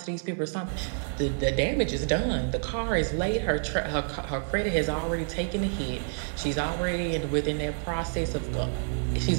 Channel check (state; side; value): silent; left; 59 dB below the other